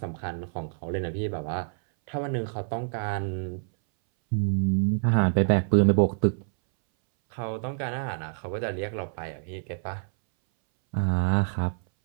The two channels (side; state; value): left; silent; 60 dB below the other